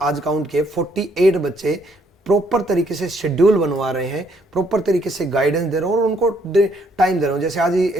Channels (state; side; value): normal; both; correlation 0.69